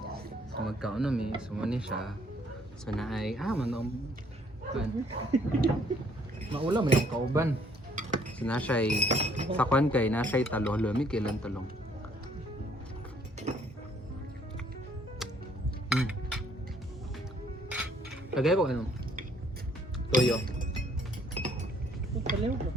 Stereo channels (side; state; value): both; normal; correlation 0.63